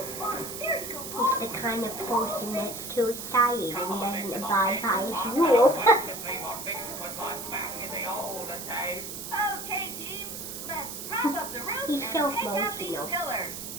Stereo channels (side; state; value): right; noise; hiss, 8 dB below the sound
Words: Bob, there you go, He's Bob. the kind of person that's too excited and doesn't abide by his I'd rules. like to see what Fixham was like back in the olden days. Okay, team. Let's prop up the roof He's and so take out these emotional. pillars.